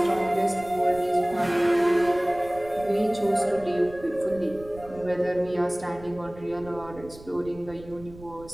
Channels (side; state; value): right; noise; rumble, 18 dB below the sound